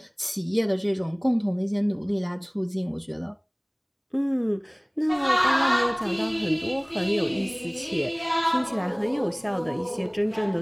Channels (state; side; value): identical; both; correlation 1.00